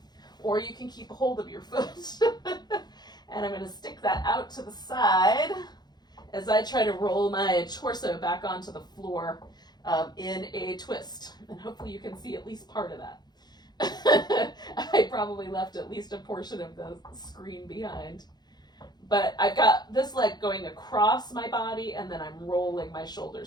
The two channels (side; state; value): right; late; 0.20 ms